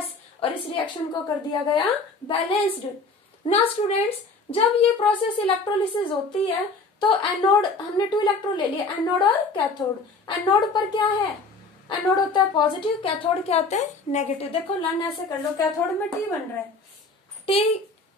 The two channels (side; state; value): right; quieter; 3.7 dB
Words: और इस रिएक्शन को कर दिया गया बैलेंस्ड। ना स्टूडेंट्स, जब ये प्रोसेस इलेक्ट्रोलिसिस होती है तो एनोड, हमने 2 इलेक्ट्रोड ले लिए, एनोड और कैथोड। एनोड पर क्या है, एनोड होता है पॉजिटिव, कैथोड क्या होते हैं, नेगेटिव। देखो लर्न ऐसे कर लो, कैथोड में टी बन रहा है, टी